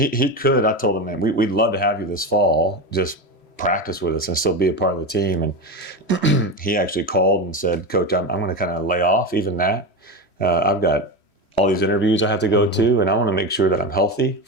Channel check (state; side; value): late; right; 3.1 ms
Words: could. I told him, man, we'd love to have you this fall. Just practice with us and still be a part of the team. And he actually called and said, Coach, I'm going to kind of lay off even that. I've got all these interviews I have to go to, and I want to make sure that I'm healthy